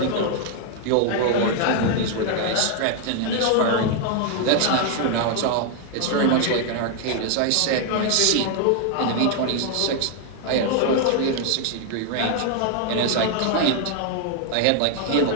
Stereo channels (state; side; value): different; both; correlation 0.00